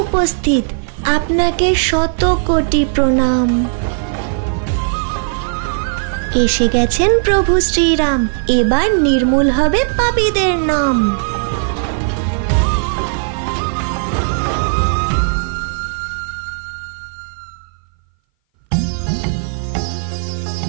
উপস্থিত। আপনাকে শত কোটি প্রণাম। এসে গেছেন প্রভু শ্রীরাম, এবার নির্মূল হবে পাপীদের নাম।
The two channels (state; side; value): silent; left; 59 dB below the other